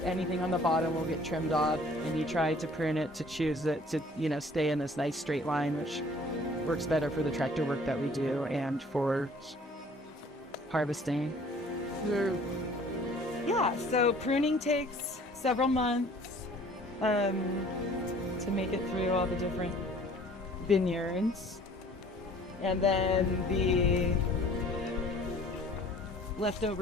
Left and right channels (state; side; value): normal; both; correlation 0.53